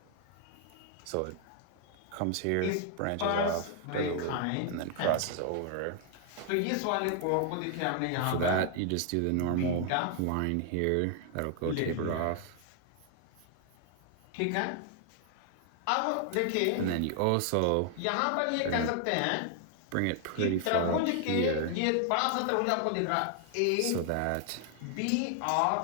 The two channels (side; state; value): both; different; correlation 0.00